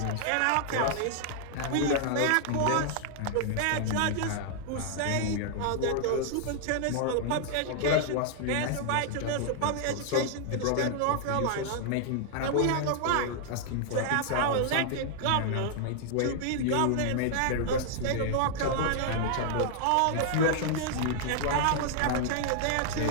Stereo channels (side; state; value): both; different; correlation -0.01